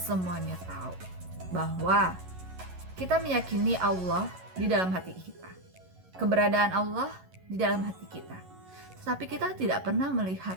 tahu bahwa kita meyakini Allah di dalam hati kita, keberadaan Allah di dalam hati kita. Tetapi kita tidak pernah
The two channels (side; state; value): left; late; 11 ms